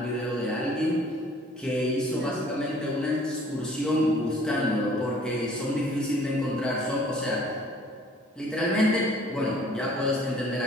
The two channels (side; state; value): both; normal; correlation 0.55